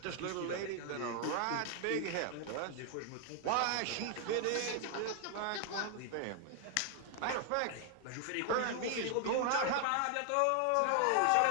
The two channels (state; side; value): different; both; correlation 0.00